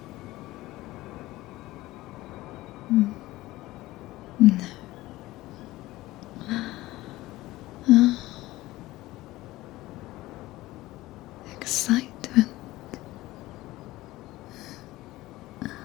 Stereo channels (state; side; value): quieter; right; 17.8 dB